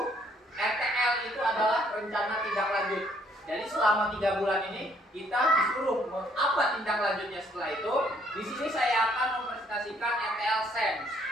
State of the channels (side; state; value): both; normal; correlation 0.66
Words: RTL itu adalah rencana tindak lanjut. Jadi selama 3 bulan ini kita disuruh apa tindak lanjutnya setelah itu. Di sini saya akan mempresentasikan RTL SEMS.